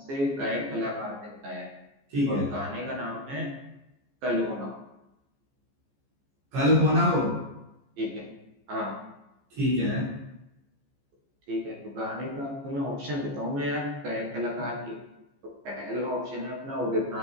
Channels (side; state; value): left; late; 14 ms